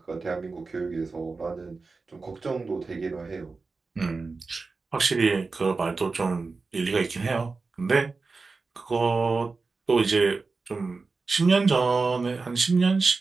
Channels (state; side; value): quieter; left; 4.1 dB